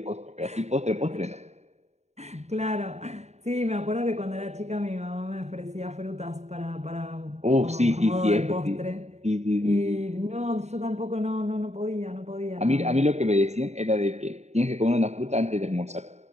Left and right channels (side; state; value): left; late; 0.32 ms